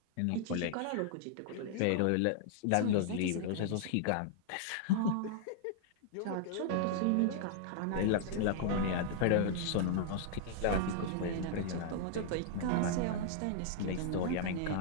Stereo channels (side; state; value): both; different; correlation -0.01